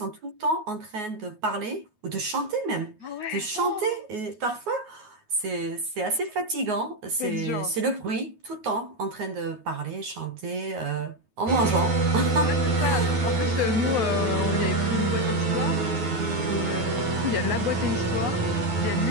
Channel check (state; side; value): late; left; 9.4 ms